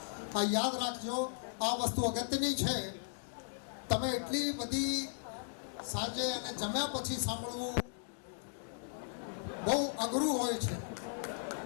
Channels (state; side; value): silent; right; digital silence